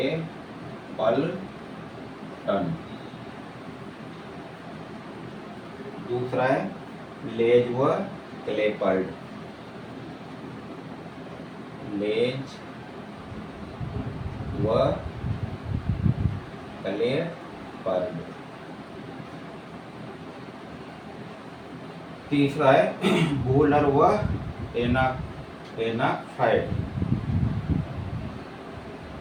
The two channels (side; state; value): both; identical; correlation 1.00